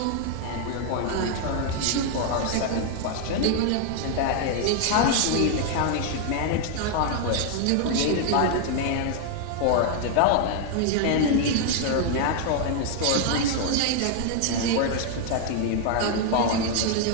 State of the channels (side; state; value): both; different; correlation 0.00